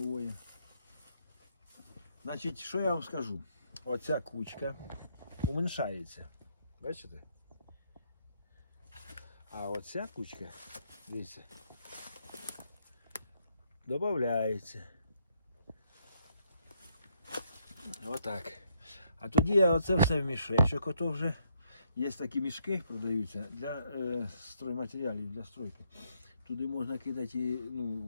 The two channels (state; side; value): inverted; both; correlation -0.73